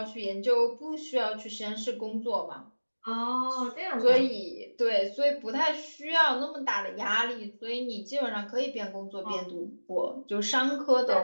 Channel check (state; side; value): inverted; both; correlation -1.00